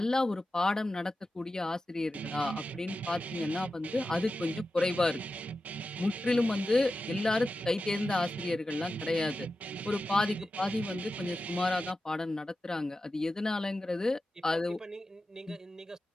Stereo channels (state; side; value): normal; both; correlation 0.92